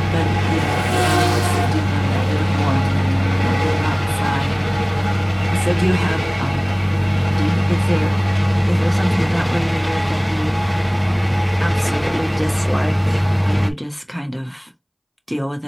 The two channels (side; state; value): both; identical; correlation 1.00